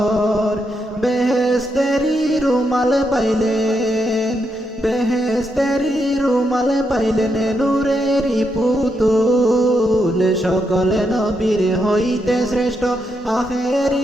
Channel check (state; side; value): normal; both; correlation 0.81